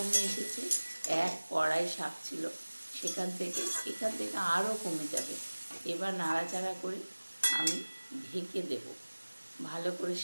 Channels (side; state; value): both; inverted; correlation -1.00